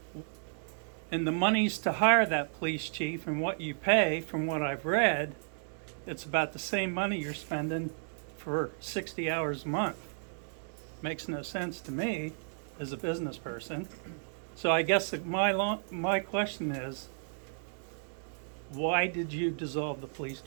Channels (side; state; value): left; silent; digital silence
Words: And the monies to hire that police chief and what you pay, from what I've read, it's about the same money you're spending for 60 hours a month. Makes no sense to me as a business person. So I guess my question is, why did you dissolve the police